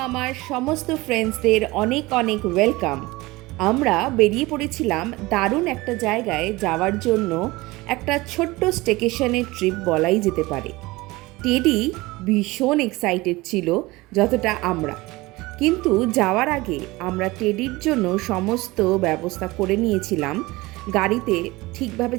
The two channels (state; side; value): quieter; left; 21.1 dB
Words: সমস্ত ফ্রেন্ডসদের অনেক অনেক ওয়েলকাম। আমরা বেরিয়ে পড়েছিলাম দারুণ একটা জায়গায় যাওয়ার জন্য, একটা ছোট্ট স্টেকেশনের ট্রিপ বলাই যেতে পারে। টেডি ভীষণ এক্সাইটেড ছিল যতটা আমরা, কিন্তু যাওয়ার আগে আমরা টেডির জন্য সমস্ত ব্যবস্থা করে নিয়েছিলাম গাড়িতে ঠিকভাবে